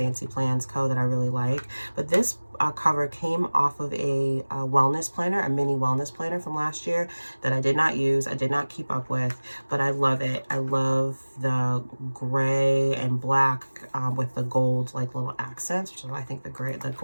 Plans Co. that I really like, but this cover came off of a wellness planner, a mini wellness planner from last year that I did not use, I did not keep up with, but I love it. I love the gray and black with the gold like little accents, which is why I think the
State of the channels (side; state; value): both; inverted; correlation -1.00